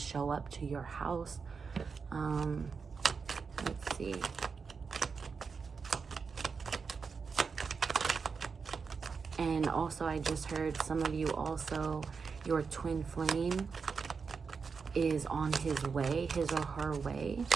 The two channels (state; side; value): quieter; left; 5.3 dB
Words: up to your house. Let's see. And also, I just heard some of you also, your twin flame is on his way, his or her way.